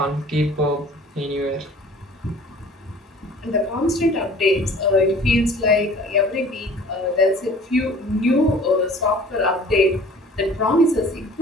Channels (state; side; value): normal; both; correlation 0.48